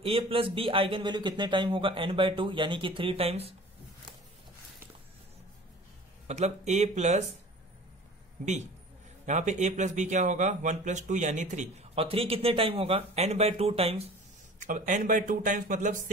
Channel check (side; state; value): both; normal; correlation 0.43